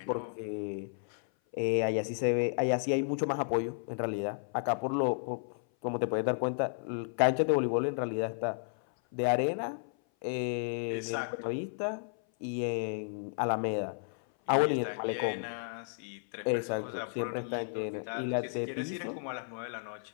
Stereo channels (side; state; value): right; silent; 56 dB below the other